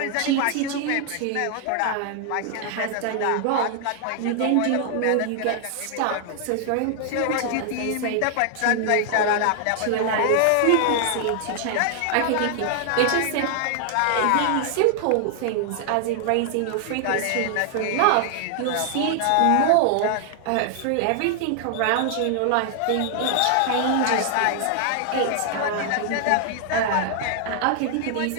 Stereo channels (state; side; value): different; both; correlation 0.00